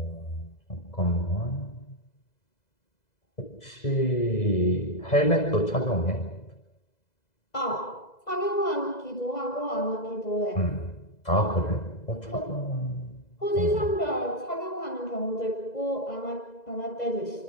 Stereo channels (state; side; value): late; right; 2.0 ms